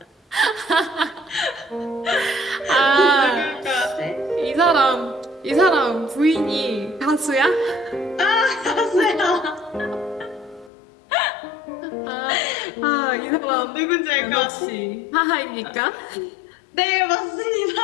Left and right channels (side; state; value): right; drops out; at 10.7 s